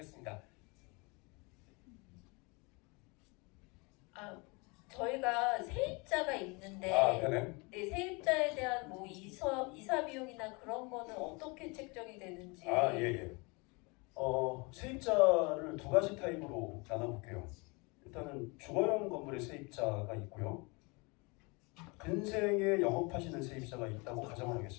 저희가 세입자가 있는데 네네. 네, 세입자에 대한 뭐 이사 비용이나 그런 거는 어떻게 책정이 되는지. 예. 세입자를 2가지 타입으로 나눠볼게요. 일단은 주거용 건물의 세입자가 있고요. 근생에 영업하시는 세입자가 있다고 가정을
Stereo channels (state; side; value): quieter; right; 28.8 dB